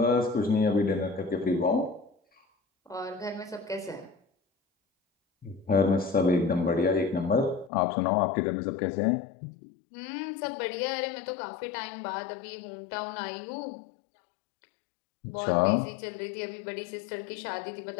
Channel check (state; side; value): drops out; right; at 7.7 s